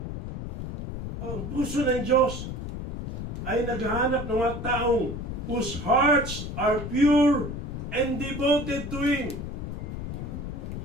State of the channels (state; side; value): noise; left; rumble, 6 dB below the sound